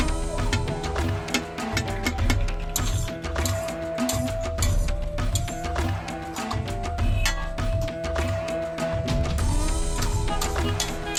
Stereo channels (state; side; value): identical; both; correlation 1.00